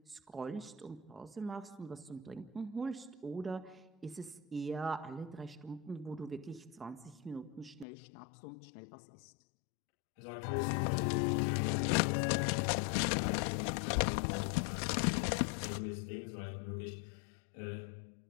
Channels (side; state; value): right; drops out; at 7.9 s